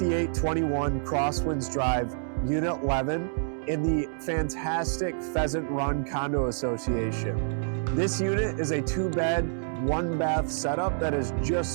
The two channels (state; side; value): silent; left; digital silence